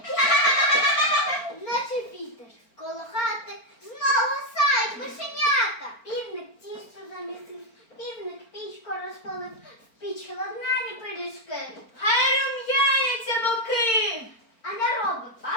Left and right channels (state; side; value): late; right; 4.4 ms